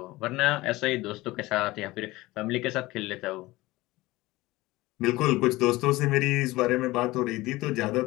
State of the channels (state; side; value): quieter; right; 19.5 dB